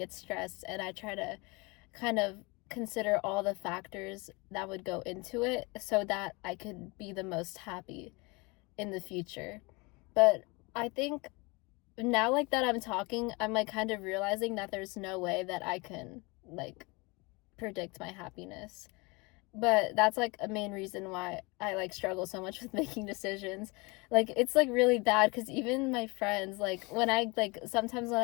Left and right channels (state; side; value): quieter; right; 26.9 dB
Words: stressed and I try to kind of consider all the factors that would go into it so that I could be the most happy in the future. But I think now, like, that I'm talking, I'm, like, kind of realizing that there's no way that I can, like, predict my happiness. But that's, like, a main reason why I, like, struggle so much with making decisions. Like, it's, like, really bad because even my friends, like, when I, like, sometimes when